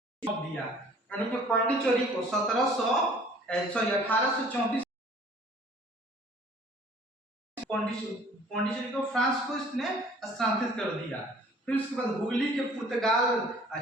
दिया, यानी कि पांडिचेरी को 1834 पांडिचेरी को फ्रांस को इसने स्थानांतरित कर दिया। फिर उसके बाद हुगली के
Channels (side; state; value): both; normal; correlation 0.53